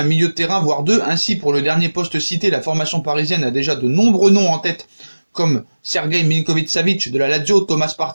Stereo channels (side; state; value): both; inverted; correlation -1.00